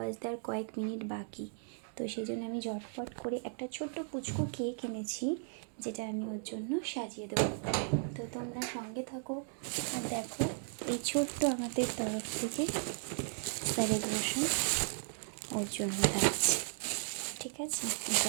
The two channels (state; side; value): silent; left; 54 dB below the other